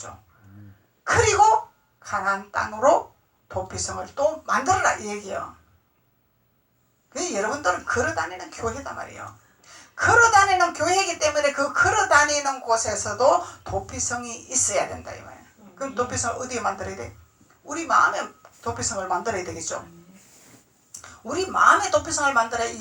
그리고 가나안 땅으로 도피성을 또 만들어라 이 얘기예요. 그 여러분들은 걸어다니는 교회다 말이에요. 걸어다니는 교회이기 때문에 그 걸어다니는 곳에서도 도피성이 있어야 된다 이 말이에요. 그럼 도피성을 어디에 만들어야 돼? 우리 마음에 도피성을 만들어야 되겠죠. 우리 마음의 도피성을 만들어야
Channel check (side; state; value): both; identical; correlation 1.00